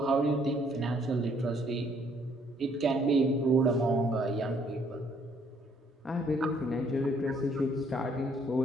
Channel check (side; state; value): both; normal; correlation 0.65